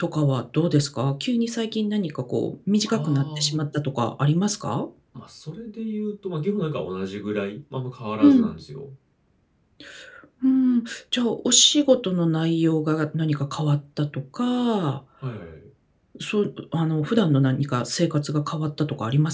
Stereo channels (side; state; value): both; identical; correlation 1.00